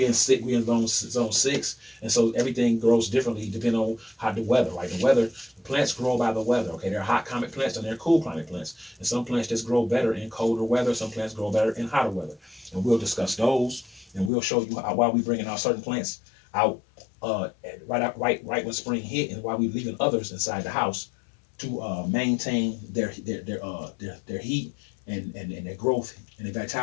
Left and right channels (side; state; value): right; drops out; at 14.3 s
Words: in zone 6, and so everything grows differently depending on how the weather, right? The weather. Plants grow by the weather. Okay, there are hot climate plants and there are cool climate plants, and some plants just grow better in colder weather. Some plants grow better in hotter weather, and we'll discuss those, and we'll show you why we bringing out certain plants out right when spring hit, and why we leaving others inside the house to maintain their heat and their growth and their